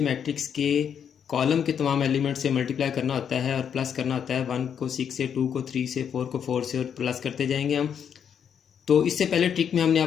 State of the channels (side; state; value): right; quieter; 8.0 dB